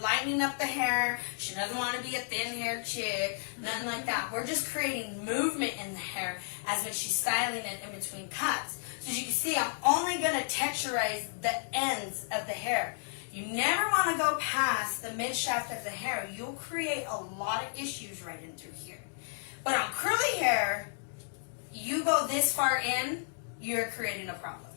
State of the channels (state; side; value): silent; right; digital silence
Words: up the hair. She doesn't want to be a thin-haired chick, nothing like that. We're just creating movement in the hair as when she's styling it in between cuts. So as you can see, I'm only going to texturize the ends of the hair. You never want to go past the mid-shaft of the hair. You'll create a lot of issues right in through here. But on curly hair, you go this far in, you're creating a problem.